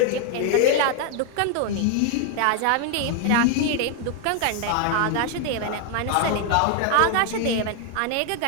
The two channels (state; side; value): different; both; correlation 0.01